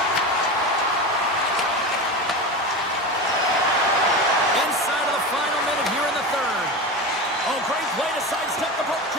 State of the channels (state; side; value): normal; both; correlation 0.25